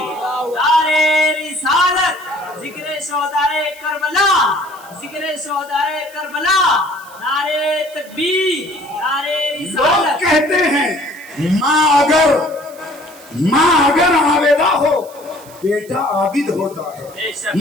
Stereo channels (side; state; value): right; noise; hiss, 22 dB below the sound